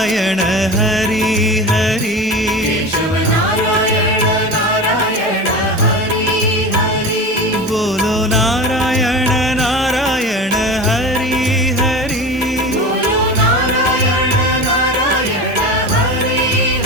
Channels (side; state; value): both; normal; correlation 0.30